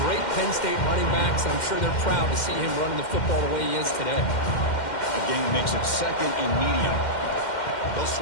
great Penn State running backs. And I'm sure they're proud to see him running the football the way he is today. Game makes it 2nd and medium. They'll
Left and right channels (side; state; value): right; late; 2.1 ms